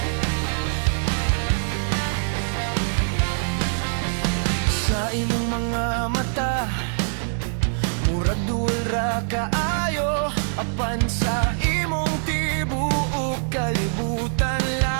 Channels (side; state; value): left; silent; 63 dB below the other